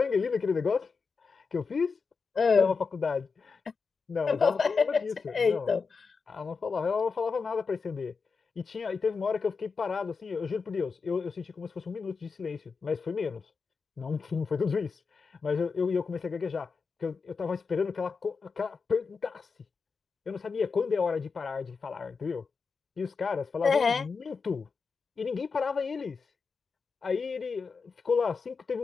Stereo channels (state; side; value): quieter; right; 5.0 dB